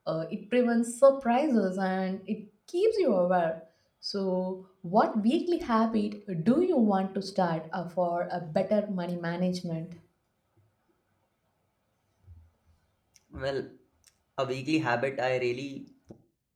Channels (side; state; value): both; identical; correlation 1.00